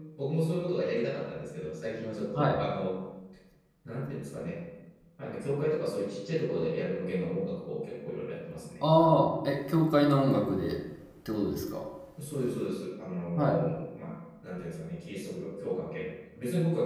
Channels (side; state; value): both; identical; correlation 1.00